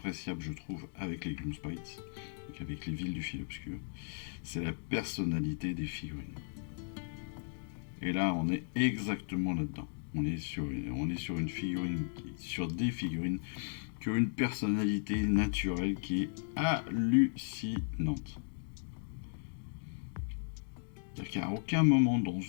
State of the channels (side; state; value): right; silent; digital silence